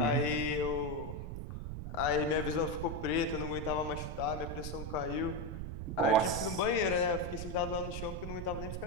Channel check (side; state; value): right; noise; rumble, 6 dB below the sound